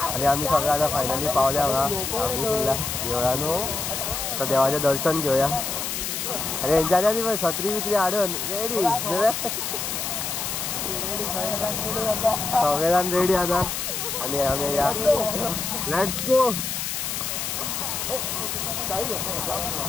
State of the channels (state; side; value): noise; left; hiss, 3 dB below the sound